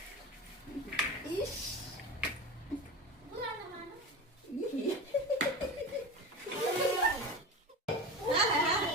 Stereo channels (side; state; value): both; normal; correlation 0.28